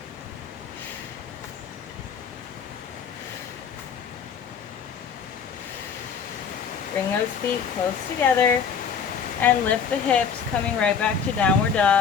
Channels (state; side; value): quieter; right; 6.7 dB